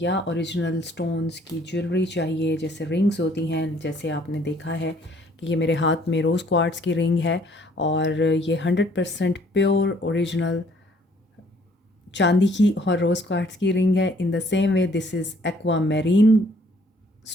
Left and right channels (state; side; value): normal; both; correlation 0.61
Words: या ओरिजिनल स्टोन्स की ज्वेलरी चाहिए, जैसे रिंग्स होती हैं, जैसे आपने देखा है कि ये मेरे हाथ में रोज़ क्वार्ट्स की रिंग है और ये 100% प्योर ओरिजिनल चांदी की और रोज़ क्वार्ट्स की रिंग है। In the same way this is aqua marine